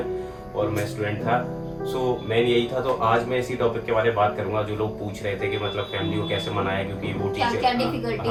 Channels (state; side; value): identical; both; correlation 1.00